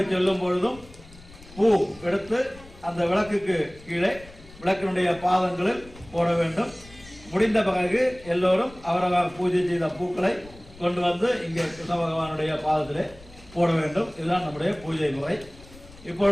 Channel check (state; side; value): noise; left; rumble, 21 dB below the sound